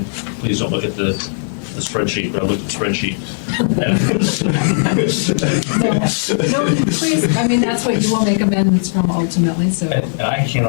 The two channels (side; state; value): right; silent; 59 dB below the other